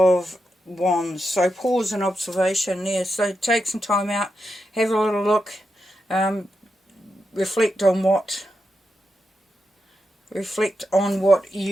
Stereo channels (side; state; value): both; normal; correlation 0.86